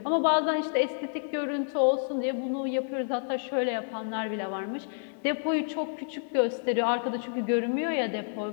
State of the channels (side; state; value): right; silent; digital silence